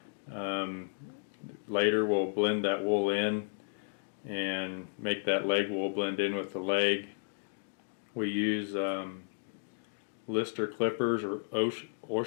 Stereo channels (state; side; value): silent; right; digital silence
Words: Later we'll blend that wool in and make that leg wool blend in with the leg. We use Lister clippers or